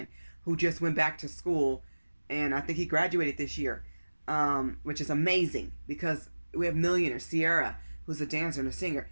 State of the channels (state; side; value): inverted; both; correlation -1.00